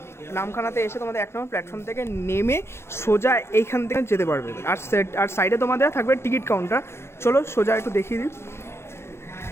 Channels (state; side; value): late; right; 0.12 ms